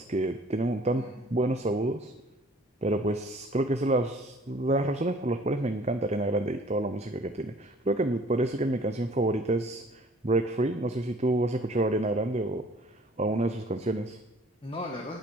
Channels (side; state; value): both; normal; correlation 0.53